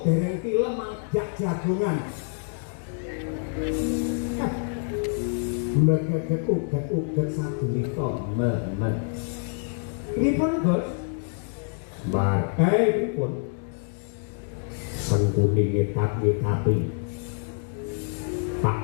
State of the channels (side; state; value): right; silent; 61 dB below the other